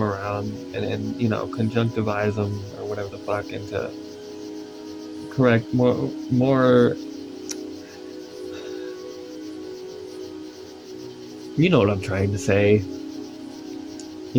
around and you know, conjunctivize them or whatever the fuck into correct more you know what I'm trying to say.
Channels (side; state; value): both; identical; correlation 1.00